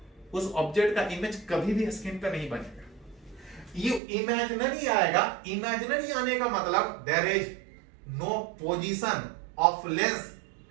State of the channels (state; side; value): drops out; left; at 4.0 s